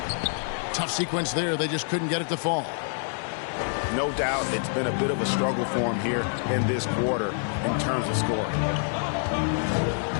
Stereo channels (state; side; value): silent; right; 60 dB below the other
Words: Tough sequence there. They just couldn't get it to fall. No doubt it's been a bit of a struggle for him here in this quarter in terms of scoring.